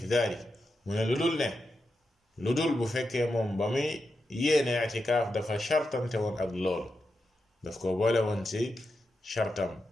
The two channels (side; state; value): both; normal; correlation 0.88